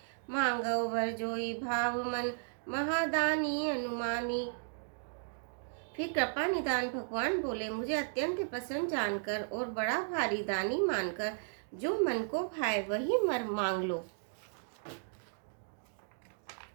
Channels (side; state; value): left; silent; digital silence